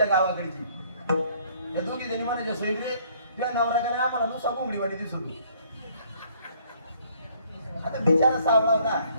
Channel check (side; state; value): both; inverted; correlation -0.62